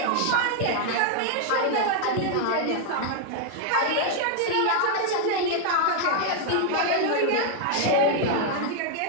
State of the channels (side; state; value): both; different; correlation 0.00